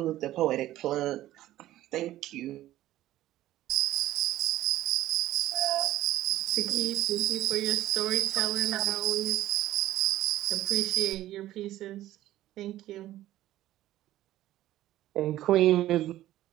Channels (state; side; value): quieter; left; 14.3 dB